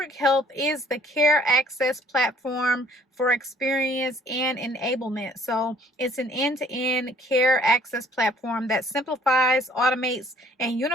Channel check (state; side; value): normal; both; correlation 0.58